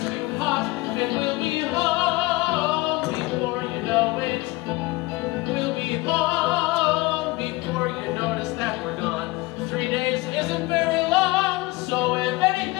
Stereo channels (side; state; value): right; quieter; 21.6 dB